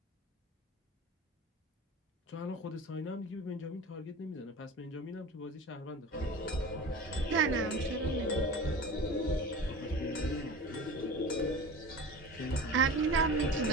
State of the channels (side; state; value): both; normal; correlation 0.35